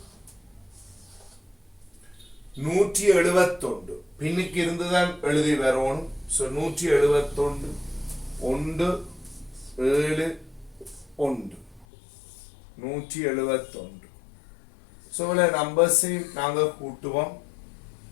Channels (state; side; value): drops out; right; at 11.9 s